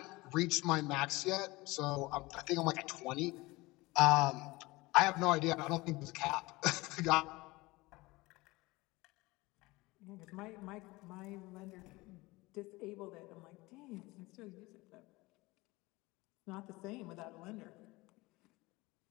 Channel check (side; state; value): right; quieter; 21.8 dB